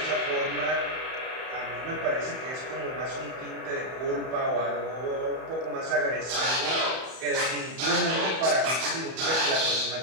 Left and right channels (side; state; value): left; late; 31 ms